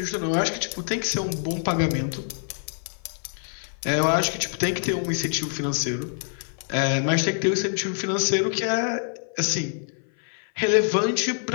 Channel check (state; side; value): silent; right; 56 dB below the other